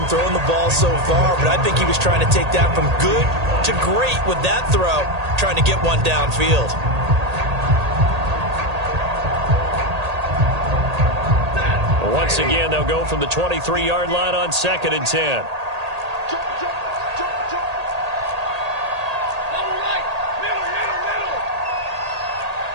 throwing the ball so far, but I think he was trying to take that from good to great with that throw, trying to get one downfield. Once again, they'll go from the 23-yard line on 2nd and 10.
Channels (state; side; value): late; left; 1.8 ms